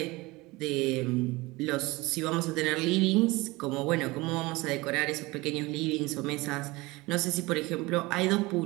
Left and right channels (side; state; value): left; quieter; 22.2 dB